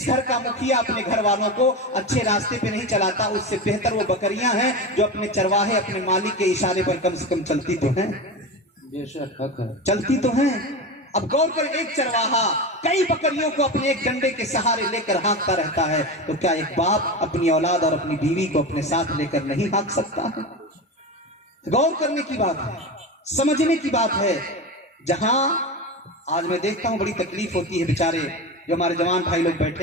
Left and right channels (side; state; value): both; normal; correlation 0.23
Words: घर का मुखिया अपने घर वालों को अच्छे रास्ते पे नहीं चलाता। उससे बेहतर वो बकरियां हैं जो अपने चरवाहे, अपने मालिक के इशारे पर कम से कम चलती तो हैं, बेशक हक है, चलती तो हैं। अब गौर कर, एक चरवाहा कई बकरियों को अपने एक डंडे के सहारे लेकर हाँकता रहता है, तो क्या एक बाप अपनी औलाद और अपनी बीवी को अपने साथ लेकर नहीं हाँक सकता है? गौर करने की बात है, समझने की बात है। जहां आज मैं देखता हूं बड़ी तकलीफ होती है, बेचारे जो हमारे जवान भाई लोग